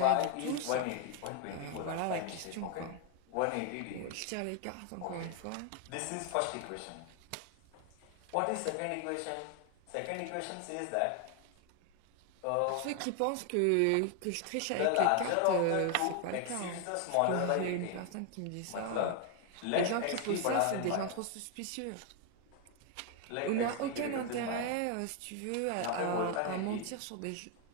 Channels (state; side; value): different; both; correlation 0.00